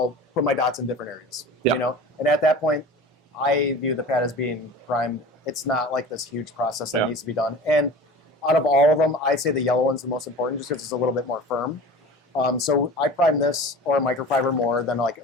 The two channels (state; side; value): normal; both; correlation 0.37